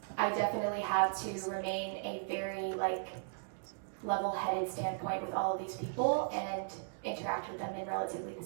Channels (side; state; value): left; silent; digital silence